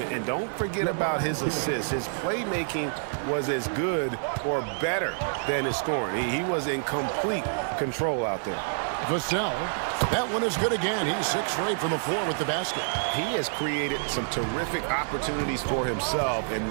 don't forget about his assists. His playmaking was as good or better than his scoring. He was in complete control out there. Vassell, that one is good again. He's 6 straight from the floor with the basket. He has created some terrific opportunities for himself and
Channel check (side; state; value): left; silent; digital silence